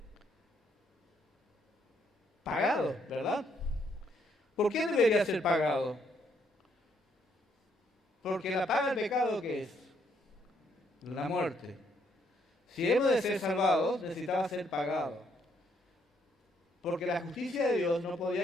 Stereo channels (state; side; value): normal; both; correlation 0.71